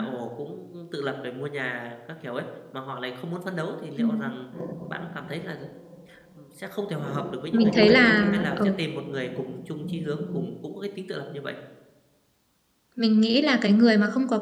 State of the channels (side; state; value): both; identical; correlation 1.00